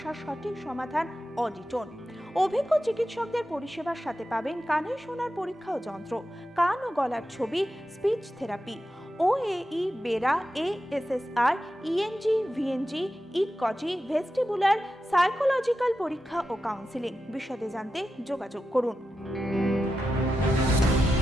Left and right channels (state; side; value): normal; both; correlation 0.90